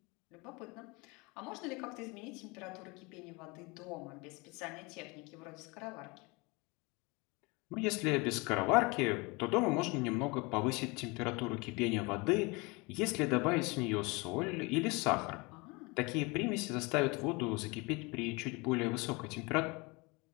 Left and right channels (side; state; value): right; quieter; 26.9 dB